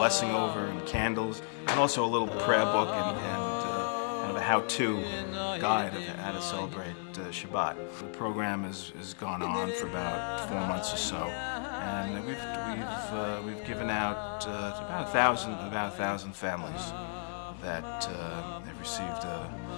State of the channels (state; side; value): silent; right; 56 dB below the other